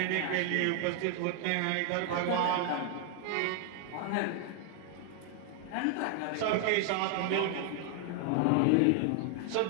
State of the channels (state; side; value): different; both; correlation 0.00